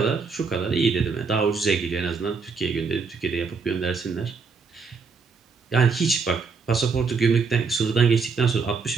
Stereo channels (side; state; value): left; quieter; 4.9 dB